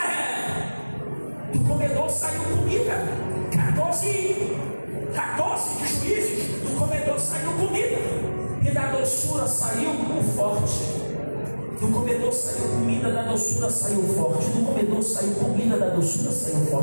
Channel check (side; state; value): both; inverted; correlation -1.00